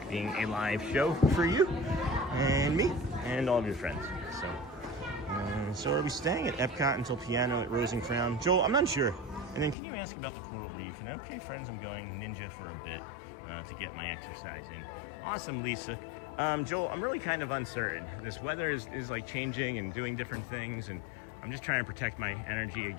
being a live show for you and me and all of your friends. So are we staying at Epcot until piano at Rose and Crown? Joel, I'm not sure. And then can you ask about the Coral Reef? And okay, friends, I'm going ninja for a bit to get my exercise in. Awesome, Lisa. Joel, I'm really kind of uncertain. This weather is like changing and doing different things, and I'm just trying to protect my energy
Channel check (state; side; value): drops out; right; at 9.8 s